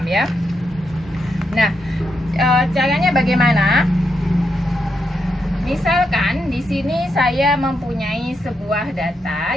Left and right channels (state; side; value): normal; both; correlation 0.82